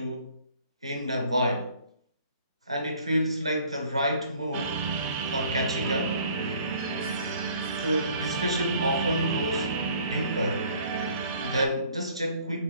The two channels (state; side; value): inverted; both; correlation -0.56